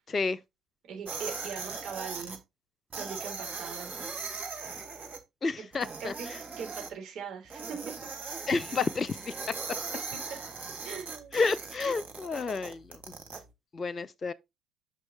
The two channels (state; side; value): normal; both; correlation 0.75